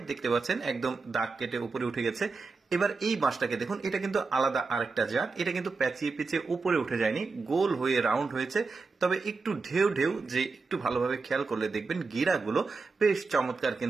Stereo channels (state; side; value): quieter; left; 4.2 dB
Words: দেখতে পাচ্ছেন একদম দাগ কেটে উপরে উঠে গেছে। এবার এই বাঁশটাকে দেখুন, এটা কিন্তু আলাদা আরেকটা জাত। এটা কিন্তু প্যাচিয়ে পেঁচিয়ে উপরে উঠে যায়নি, গোল হয়ে রাউন্ড হয়েছে। তবে একটু ঢেউ ঢেউ, যে একটু ভালোভাবে খেয়াল করলে দেখবেন গিরাগুলো বেশ চমৎকার,